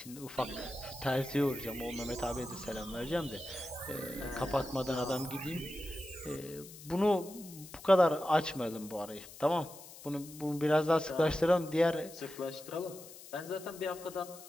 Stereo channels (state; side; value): noise; left; hiss, 16 dB below the sound